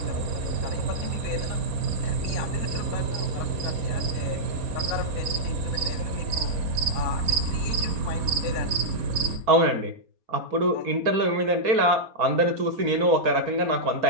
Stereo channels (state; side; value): late; left; 4.2 ms